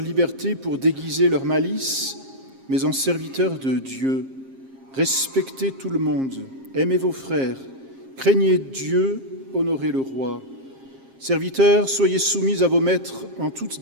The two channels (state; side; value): late; left; 7.5 ms